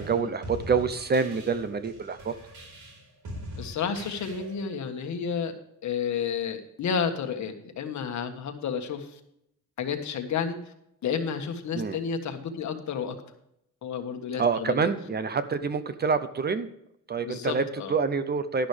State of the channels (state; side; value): normal; both; correlation 0.08